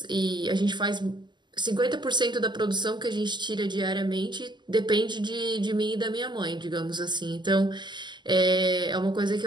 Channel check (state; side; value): late; left; 0.21 ms